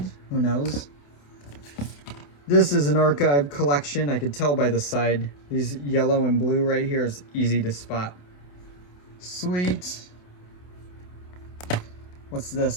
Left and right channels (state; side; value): late; right; 28 ms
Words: Who knows? This is an archive collection. I could tell by the side. These yellow and blue right here is easy to spot. Sweet. What's